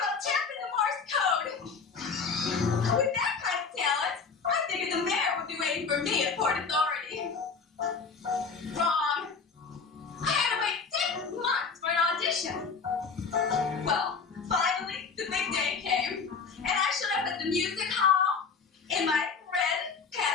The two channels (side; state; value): right; quieter; 5.2 dB